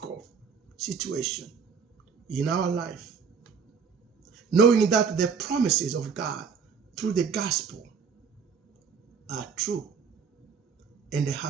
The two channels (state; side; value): quieter; left; 6.0 dB